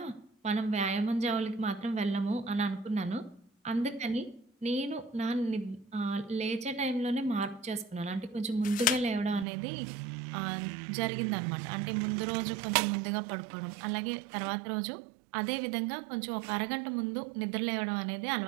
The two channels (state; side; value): drops out; left; at 9.5 s